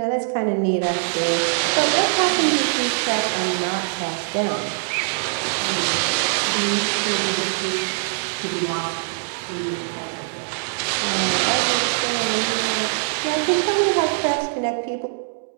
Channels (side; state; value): left; silent; digital silence